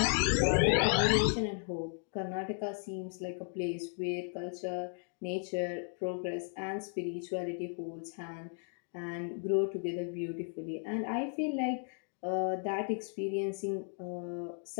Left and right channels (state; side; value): silent; right; 54 dB below the other